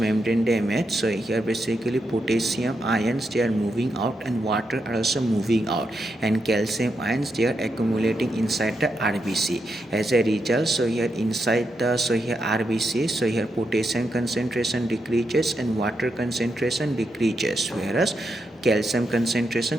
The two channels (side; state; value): both; normal; correlation 0.83